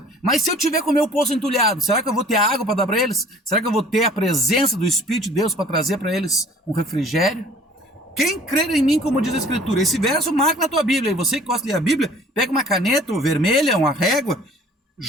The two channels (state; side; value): normal; both; correlation 0.51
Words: Mas se eu tiver com o meu poço entulhado, será que eu vou ter água para dar para eles? Será que eu vou ter a presença do Espírito de Deus para trazer para eles um refrigério? Quem crer em mim, como diz a Escritura, esse verso marca na tua Bíblia. E você que gosta de ler a Bíblia, pega uma caneta ou vermelha, uma régua.